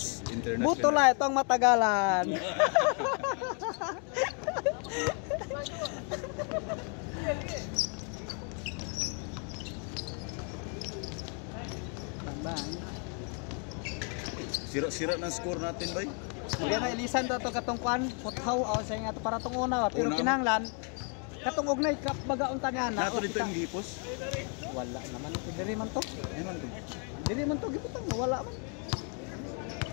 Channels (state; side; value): quieter; right; 40.0 dB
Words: International. Buto la itong matagalan. Sira-sira ng score natin, bay. Kaya na ilisan to katong kwan, puthaw o sa nga to para tong una, pero Una. kinahanglan katong ugnay kap bagaunta niya na. Nato dito yung gipos. Wala naman diri man to. Ayun to. Diri man to giputang wala man.